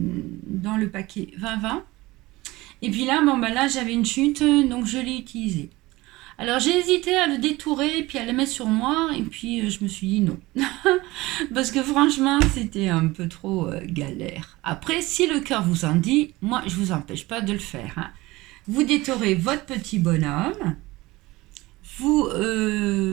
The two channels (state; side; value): quieter; left; 20.0 dB